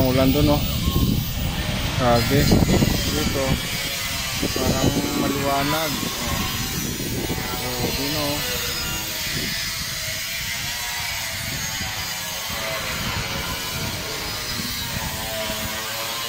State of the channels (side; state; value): both; identical; correlation 1.00